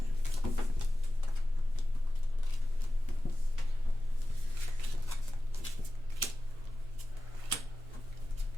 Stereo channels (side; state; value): both; normal; correlation 0.94